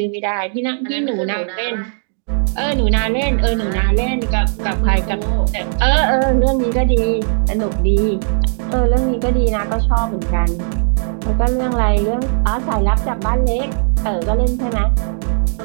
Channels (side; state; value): left; silent; digital silence